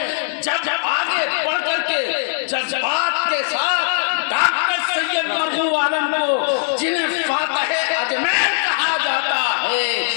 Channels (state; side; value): silent; right; digital silence